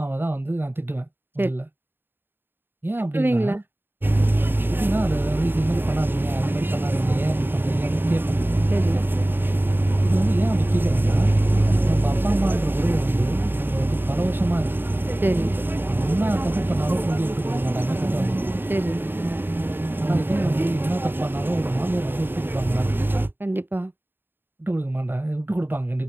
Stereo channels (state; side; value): late; left; 0.098 ms